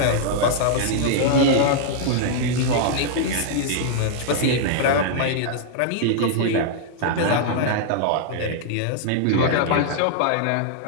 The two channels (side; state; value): both; different; correlation -0.01